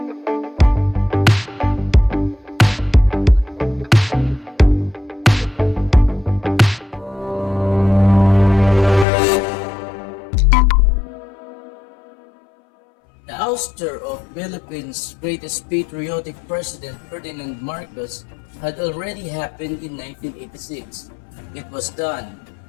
The ouster of Philippines' greatest patriotic president Ferdinand Marcos had already happened in 1986. It was done.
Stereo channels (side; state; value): right; drops out; at 9.1 s